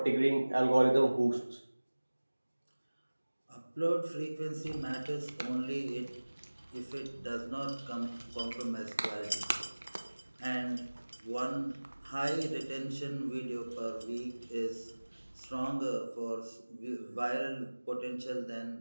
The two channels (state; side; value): inverted; both; correlation -1.00